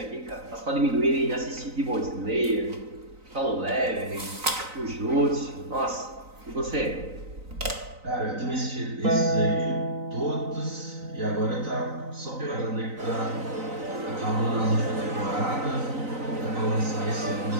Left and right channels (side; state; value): left; late; 3.9 ms